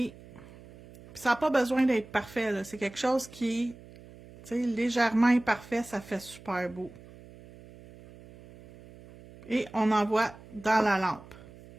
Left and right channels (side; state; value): right; noise; hum, 20 dB below the sound